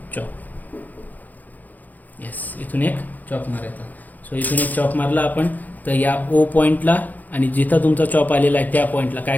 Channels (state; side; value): late; right; 0.082 ms